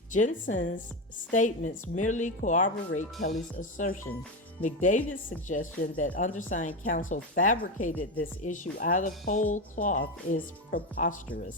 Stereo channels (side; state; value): both; normal; correlation 0.15